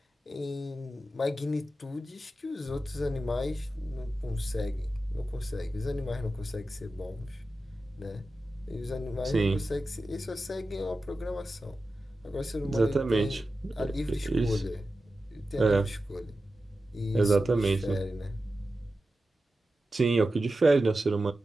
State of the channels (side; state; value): both; normal; correlation 0.93